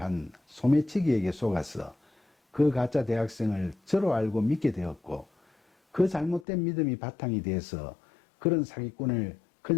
한 소매치기에게 속아서 그 가짜 대학생을 저로 알고 믿게 되었고, 그 잘못된 믿음이 바탕이 돼서 그런 사기꾼을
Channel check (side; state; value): right; drops out; at 6.5 s